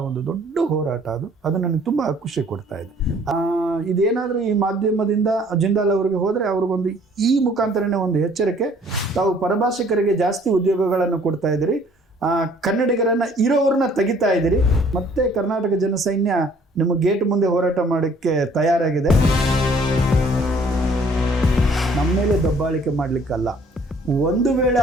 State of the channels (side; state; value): both; normal; correlation 0.58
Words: ಒಂದು ದೊಡ್ಡ ಹೋರಾಟ ಅದು ನನಗೆ ತುಂಬ ಖುಷಿ ಕೊಡ್ತಾ ಇದೆ. ಇದೇನಾದರೂ ಈ ಮಾಧ್ಯಮದಿಂದ ಜಿಂದಾಲ್ ಅವರಿಗೆ ಹೋದರೆ ಅವ್ರಿಗೊಂದು ಈ ಮುಖಾಂತರನೇ ಒಂದು ಎಚ್ಚರಿಕೆ, ತಾವು ಪರಭಾಷಿಕರಿಗೆ ಜಾಸ್ತಿ ಉದ್ಯೋಗಗಳನ್ನು ಕೊಡ್ತಾ ಇದ್ದೀರಿ, ಕನ್ನಡಿಗರನ್ನು ಇರೋವ್ರನ್ನ ತೆಗಿತಾ ಇದ್ದೀರಿ. ಮತ್ತೆ ಕರ್ನಾಟಕ ಜನಸೈನ್ಯ ನಿಮ್ಮ ಗೇಟ್ ಮುಂದೆ ಹೋರಾಟ ಮಾಡೋಕ್ಕೆ ತಯಾರಾಗಿದೆ. ನಮ್ಮ ಮೇಲೆ ದಬ್ಬಾಳಿಕೆ ಮಾಡಲಿಕ್ಕಲ್ಲ. ಒಂದು ವೇಳೆ